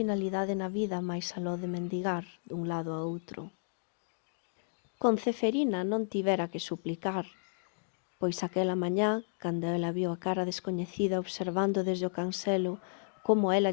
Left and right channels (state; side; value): silent; right; digital silence